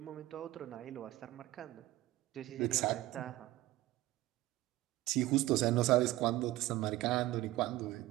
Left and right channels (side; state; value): left; quieter; 16.9 dB